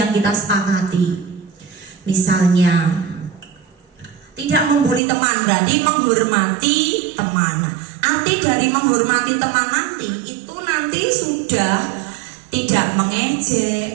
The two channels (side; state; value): left; drops out; at 5.0 s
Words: kita sepakati. Misalnya tidak membuli teman, berarti menghormati teman. Arti dari menghormati teman nanti itu nanti sudah tidak